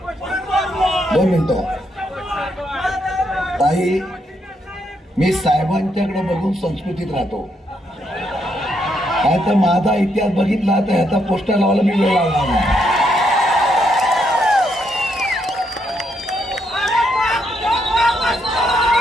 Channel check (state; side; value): normal; both; correlation 0.76